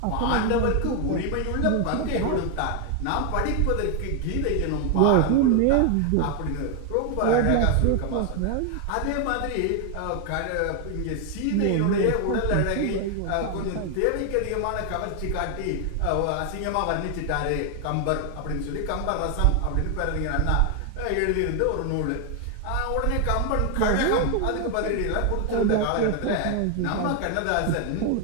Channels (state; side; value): different; both; correlation 0.01